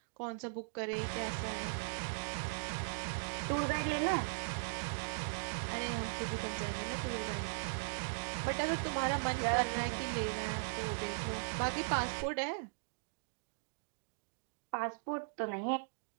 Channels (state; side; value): silent; left; digital silence